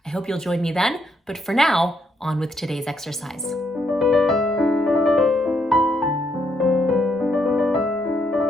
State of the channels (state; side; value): normal; both; correlation 0.75